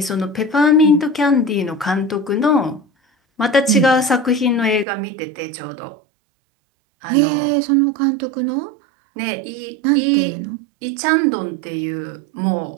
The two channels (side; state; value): left; drops out; at 4.9 s